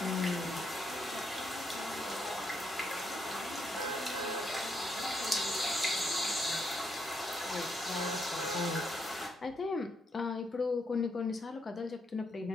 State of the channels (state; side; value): normal; both; correlation 0.77